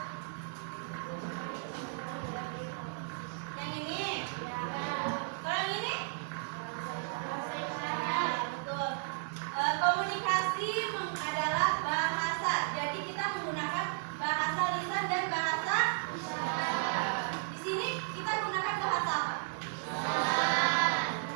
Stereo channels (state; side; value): silent; left; digital silence